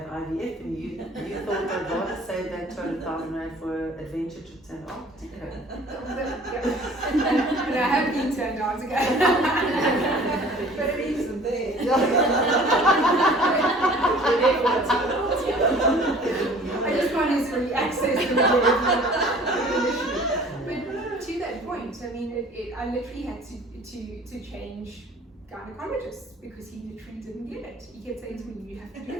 IVF, and you thought I'd rather save that 200,000 rand for adventure trips and Antarctica. And I have been to Antarctica. But it isn't there. I just want to sort of access the But to that point, I mean, I literally had to change gynecologists because he literally didn't get it. He kept saying to me, "You have to do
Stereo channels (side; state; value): both; normal; correlation 0.49